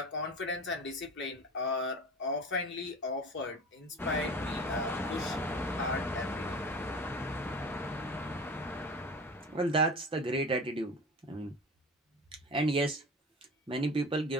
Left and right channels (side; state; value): both; normal; correlation 0.35